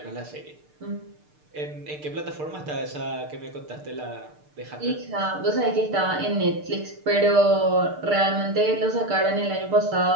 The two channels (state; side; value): late; left; 6.6 ms